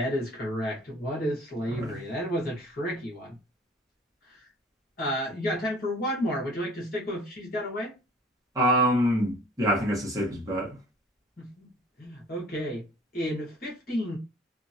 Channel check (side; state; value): both; normal; correlation 0.49